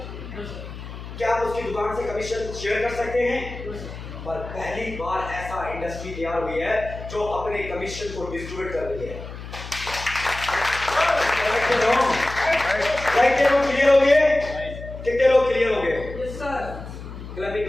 क्या आप उसकी दुकान से कमीशन शेयर कर सकते हैं? पर पहली बार ऐसा इंडस्ट्री तैयार हुई है जो अपने कमीशन को डिस्ट्रीब्यूट कर रही है। राइट लोग क्लियर हो गए? कितने लोग क्लियर हो गए? Yes sir. क्लैपिंग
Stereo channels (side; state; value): left; noise; hum, 11 dB below the sound